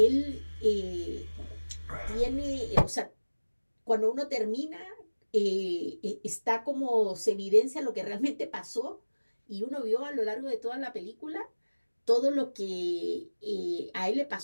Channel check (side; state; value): both; inverted; correlation -1.00